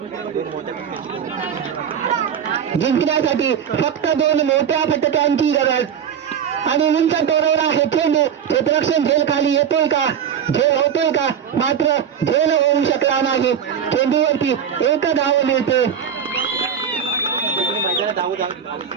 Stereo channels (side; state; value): left; quieter; 8.1 dB